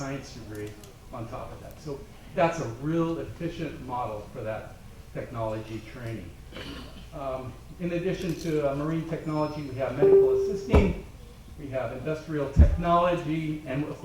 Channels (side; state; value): both; identical; correlation 1.00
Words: degree on top of that. So that's a real efficient model for that technology training. In addition to marine technology, we have medical assisting, we have industrial technology, and of